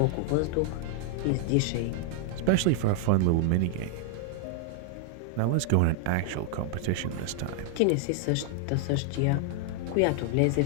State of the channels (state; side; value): different; both; correlation 0.00